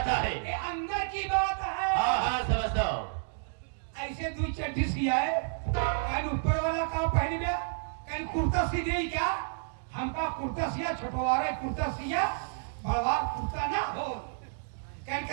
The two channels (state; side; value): silent; left; digital silence